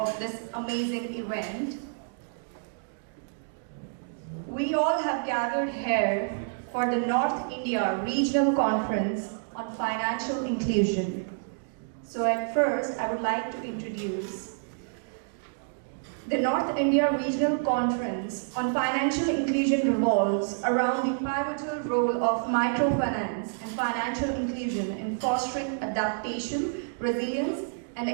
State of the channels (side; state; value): left; silent; digital silence